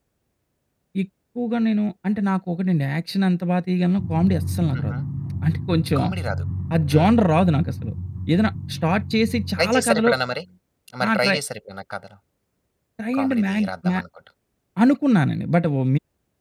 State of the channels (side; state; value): both; identical; correlation 1.00